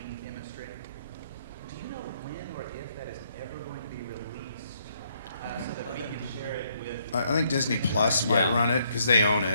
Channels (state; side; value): inverted; both; correlation -0.71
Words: chemistry. Do you know when or if that is ever going to be released so that we can share it with? I think Disney Plus might run it because they own